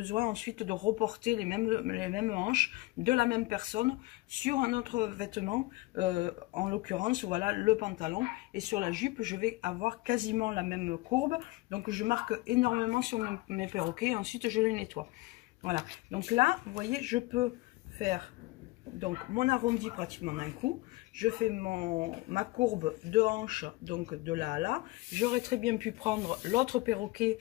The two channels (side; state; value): right; quieter; 20.9 dB